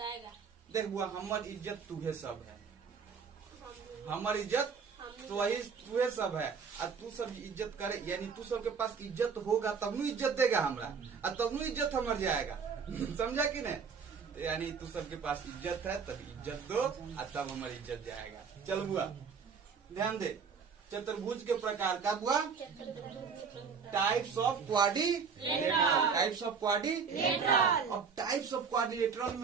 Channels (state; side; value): quieter; left; 6.0 dB